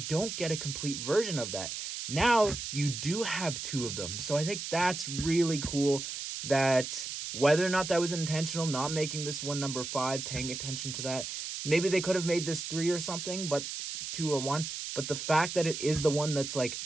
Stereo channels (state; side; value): noise; right; hiss, 6 dB below the sound